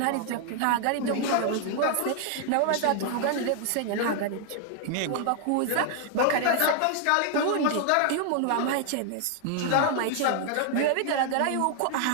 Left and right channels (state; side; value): different; both; correlation 0.00